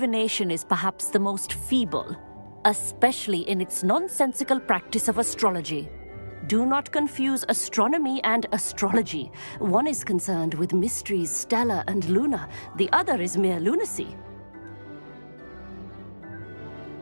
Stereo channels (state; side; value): inverted; both; correlation -1.00